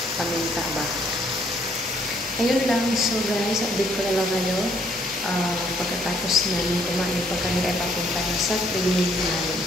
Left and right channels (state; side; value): normal; both; correlation 0.66